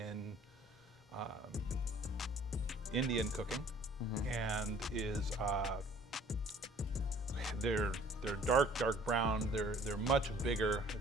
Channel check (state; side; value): normal; both; correlation 0.54